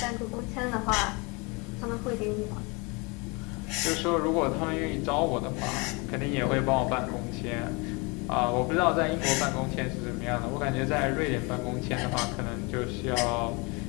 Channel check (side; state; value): right; quieter; 29.0 dB